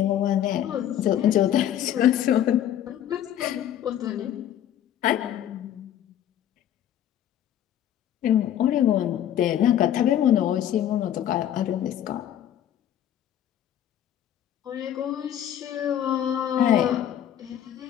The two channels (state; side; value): quieter; right; 10.7 dB